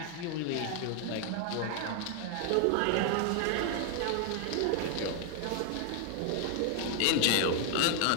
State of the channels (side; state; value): both; different; correlation 0.00